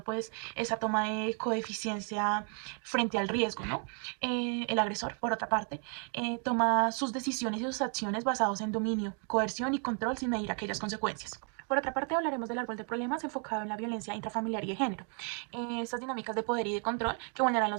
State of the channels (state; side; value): quieter; left; 39.1 dB